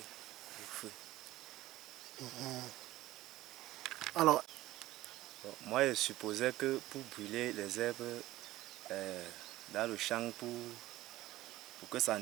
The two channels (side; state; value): left; quieter; 16.3 dB